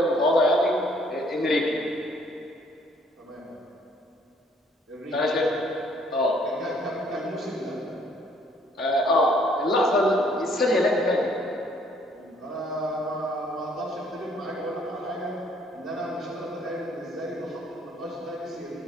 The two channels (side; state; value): both; normal; correlation 0.63